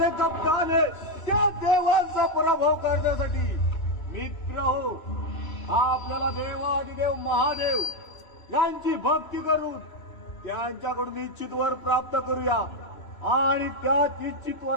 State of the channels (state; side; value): late; right; 2.9 ms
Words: कप्ताने त्या देवांचा पराभव करण्यासाठी मित्र हो, आपल्याला देवाधिदेव महादेव यांची भक्ती करून त्यांच्याकडून इच्छित वर प्राप्त करूया आणि त्या इच्छित